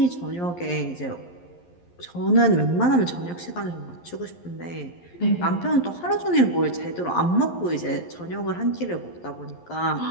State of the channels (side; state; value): right; late; 11 ms